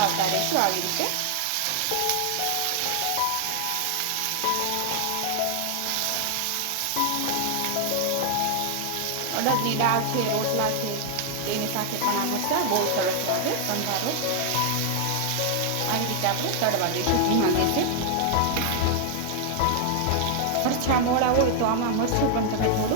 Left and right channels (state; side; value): different; both; correlation 0.00